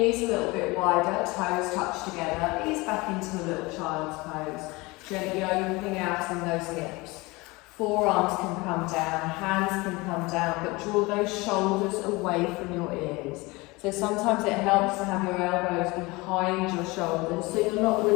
a little bit wider, toes touch together, ease back into a little child's pose. Gently opening out in those hips. Forearms can come down, hands can come down, but draw those shoulders away from your ears. So sometimes it helps to have your elbows behind your shoulders, so you're not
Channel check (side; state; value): right; quieter; 23.5 dB